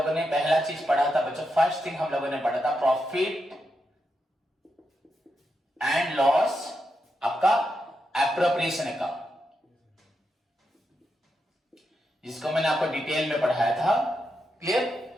ने पहला चीज पढ़ा था बच्चों, फर्स्ट थिंग हम लोगों ने पढ़ा था प्रॉफिट एंड लॉस आपका एप्रोप्रिएशन अकाउंट, जिसको मैंने आपको डिटेल में पढ़ाया था। क्लियर?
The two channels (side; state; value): both; normal; correlation 0.85